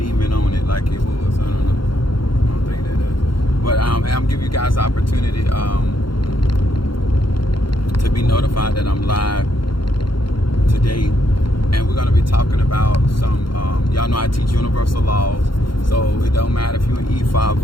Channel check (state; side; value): late; right; 0.73 ms